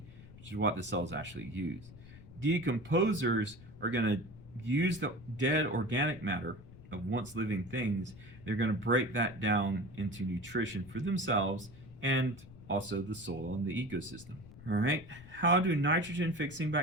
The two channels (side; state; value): left; noise; rumble, 18 dB below the sound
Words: which is what the cells actually use. Decomposers are going to use the dead organic matter of once living things. They're going to break that down into nutrition for themselves and also the soil and the ecosystem. All right, how do nitrogen-fixing